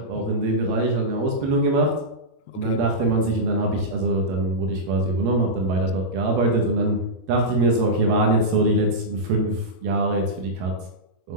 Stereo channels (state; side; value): late; left; 12 ms